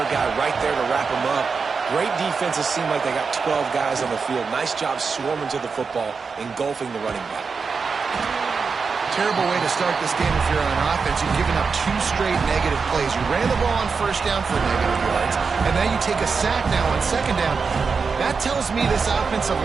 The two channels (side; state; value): left; quieter; 5.1 dB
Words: guy right there to wrap him up. Great defenses seem like they got 12 guys on the field. Nice job swarming to the football, engulfing the running back. Terrible way to start this game if you're on offense. You've given up 2 straight negative plays. You ran the ball on first down for negative yards, and now you take a sack now on second down. That tells me this offensive